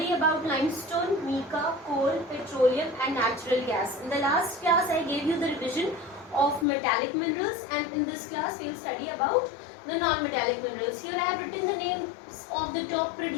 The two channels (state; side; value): drops out; right; at 6.7 s